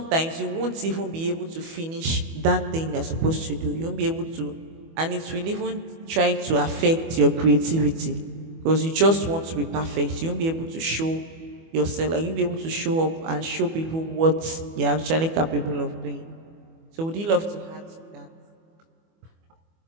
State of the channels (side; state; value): left; late; 25 ms